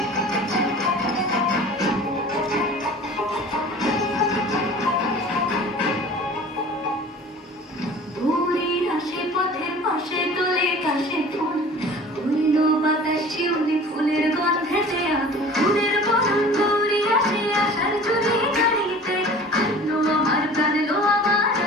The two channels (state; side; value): normal; both; correlation 0.43